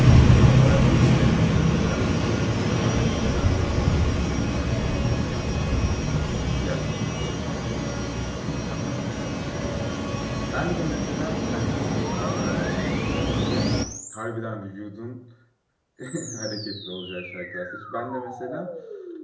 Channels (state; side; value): identical; both; correlation 1.00